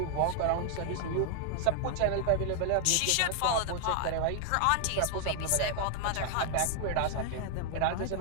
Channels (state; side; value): different; both; correlation 0.00